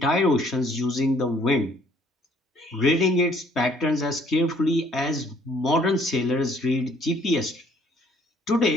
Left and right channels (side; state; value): both; normal; correlation 0.61